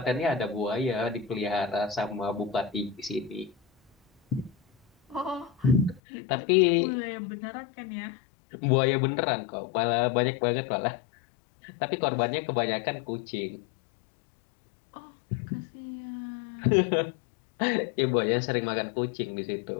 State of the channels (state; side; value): drops out; right; at 6.0 s